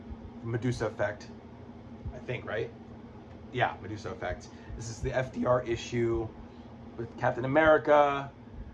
Medusa Effect, I think, right? Yeah, Medusa Effect. This is the FDR issue with Captain America,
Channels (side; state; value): both; identical; correlation 1.00